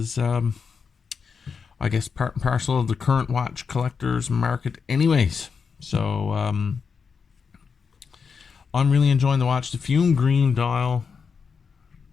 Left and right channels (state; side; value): quieter; right; 5.8 dB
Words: I guess, part and parcel of the current watch collectors market anyways. So I'm really enjoying the watch. The fume green dial